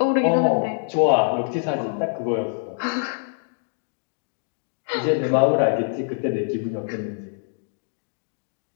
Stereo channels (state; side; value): silent; right; digital silence